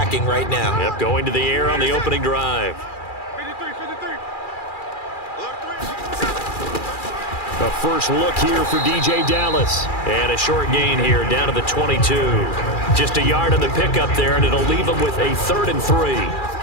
right now. Yep, going to the air on the opening drive. 53. A first look here for DJ Dallas. And a short gain here down to the 22. Just a yard on the pickup there, and it'll leave them with a 3rd and 3.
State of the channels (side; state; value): right; late; 2.4 ms